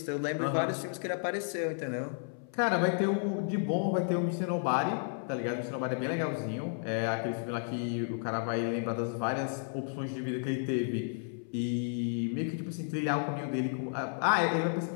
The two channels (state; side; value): silent; right; 56 dB below the other